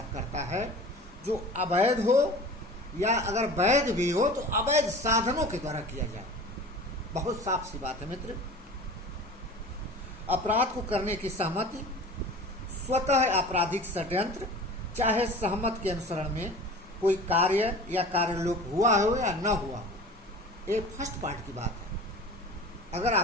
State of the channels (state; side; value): normal; both; correlation 0.39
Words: करता है जो अवैध हो या अगर वैध भी हो तो अवैध साधनों के द्वारा किया जाए। बहुत साफ सी बात है मित्र। अपराध को करने की सहमति स्वतः आपराधिक षड्यंत्र, चाहे सहमत के अनुसरण में कोई कार्य या कार्यलोप हुआ हो या न हुआ हो। ये फर्स्ट पार्ट की बात है। अगर